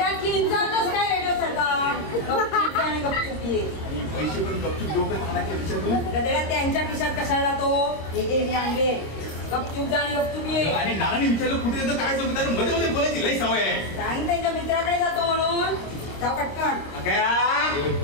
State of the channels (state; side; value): late; right; 26 ms